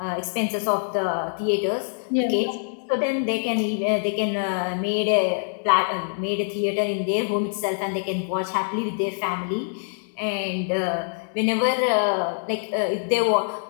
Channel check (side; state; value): right; silent; 62 dB below the other